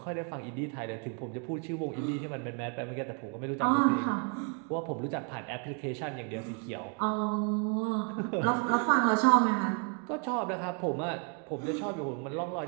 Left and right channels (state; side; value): quieter; left; 39.1 dB